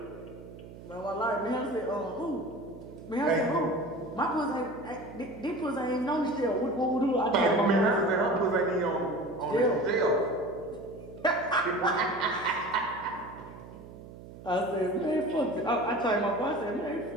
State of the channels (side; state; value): right; noise; hum, 16 dB below the sound